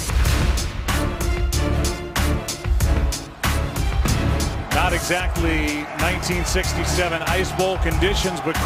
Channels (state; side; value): identical; both; correlation 1.00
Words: Not exactly 1967 Ice Bowl conditions, but